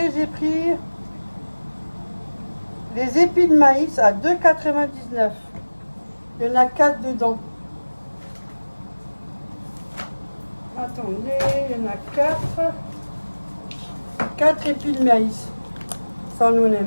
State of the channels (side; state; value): both; inverted; correlation -1.00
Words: j'ai pris les épis de maïs à 2,99. Il y en a 4 dedans. Attendez, il y en a 4. 4 épis de maïs. Ça, nous, on